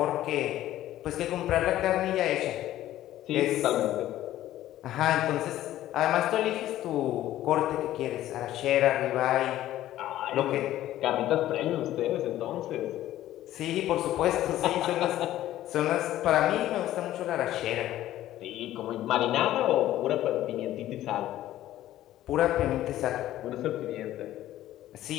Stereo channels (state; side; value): quieter; right; 13.8 dB